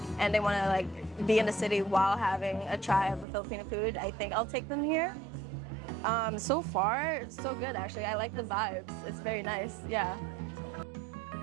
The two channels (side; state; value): left; drops out; at 3.2 s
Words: and they want to like be in the city while having a try of the Filipino food, I think I'll take them here. So far, so good actually. I like the vibes. It's very nice, yeah.